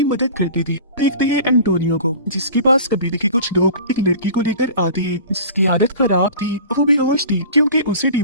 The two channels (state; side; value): inverted; both; correlation -0.40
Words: मदद करती थी। देखते हैं एंटोनियो को, जिसके पास कबीले के कुछ लोग एक लड़की को लेकर आते हैं जिसकी आदत खराब थी, वो बेहोश थी क्योंकि उसे